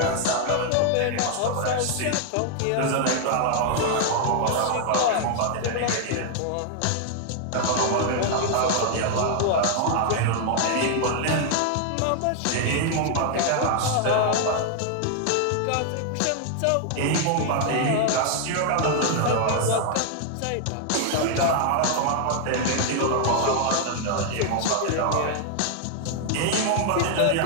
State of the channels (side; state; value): both; different; correlation 0.00